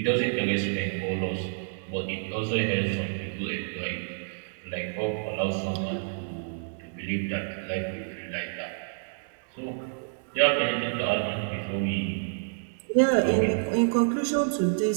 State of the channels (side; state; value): left; silent; digital silence